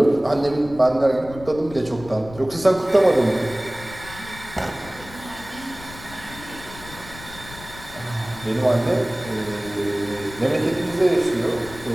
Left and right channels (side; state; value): left; noise; rumble, 16 dB below the sound